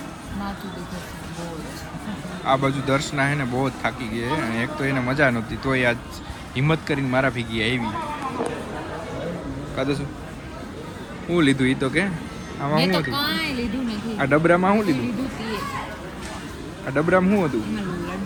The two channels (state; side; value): identical; both; correlation 1.00